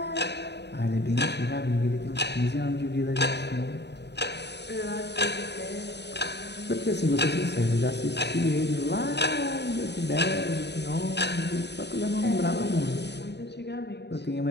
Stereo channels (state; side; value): late; right; 0.50 ms